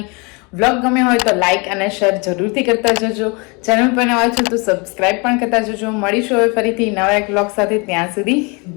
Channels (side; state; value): right; quieter; 30.0 dB